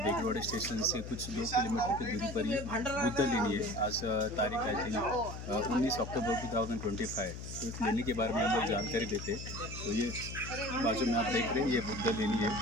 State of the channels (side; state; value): left; noise; hum, 9 dB below the sound